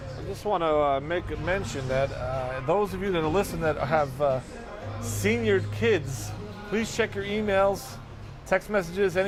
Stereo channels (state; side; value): identical; both; correlation 1.00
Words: I just want to make a mention that those of you that are listening that have senior kids, please check your emails, text messages,